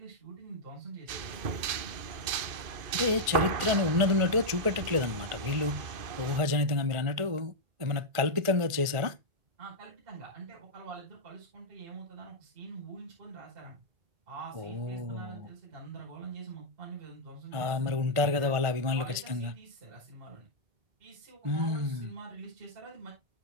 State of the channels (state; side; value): late; left; 1.5 ms